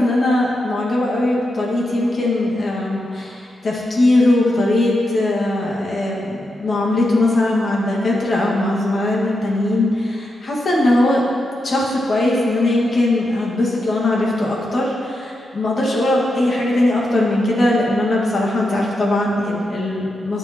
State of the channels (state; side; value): normal; both; correlation 0.86